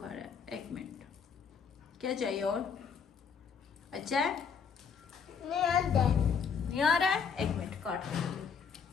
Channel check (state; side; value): quieter; right; 6.5 dB